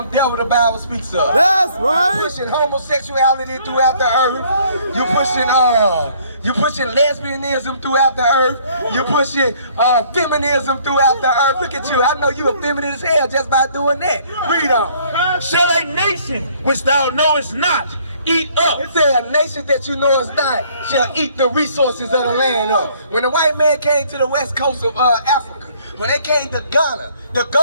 devil the Bible speaks of. That's right. You're pushing homosexuality throughout the earth. You're pushing lesbianism throughout the earth. You're pushing feminism throughout the earth. Look at you. I know you a feminine as hell just by doing that. Read on. Shall a nation which thou knowest not eat up? It said a nation that you know is not shall eat the resources of the land up. When the white man came to the west coast of Africa, when they came to Ghana, the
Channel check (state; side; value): inverted; both; correlation -0.61